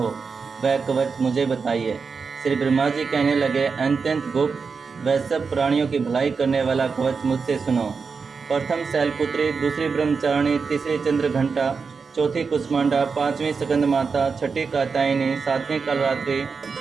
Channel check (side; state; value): left; quieter; 5.2 dB